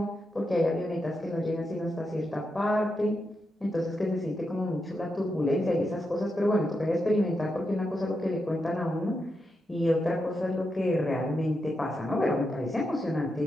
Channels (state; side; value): normal; both; correlation 0.86